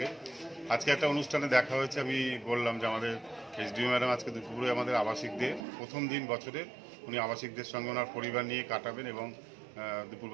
আজকে একটা অনুষ্ঠানে দেখা হয়েছে, আমি বললাম যে আমাদের এইচডিও ম্যাডাম আজকে দুপুরে আমাদের আবাসিকদের প্রথম দিন বছরের, উনি আবাসিকদের সঙ্গে ওনার পরিবার নিয়ে কাটাবেন এবং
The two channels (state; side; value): drops out; left; at 5.7 s